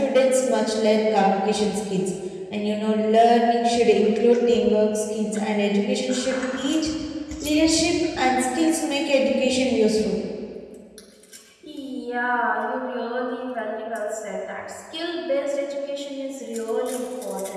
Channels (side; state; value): both; identical; correlation 1.00